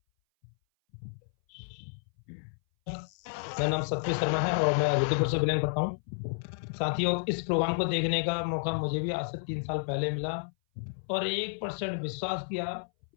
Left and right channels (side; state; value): right; silent; 57 dB below the other